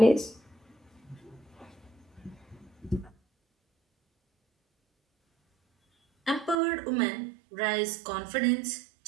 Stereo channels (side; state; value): left; drops out; at 6.6 s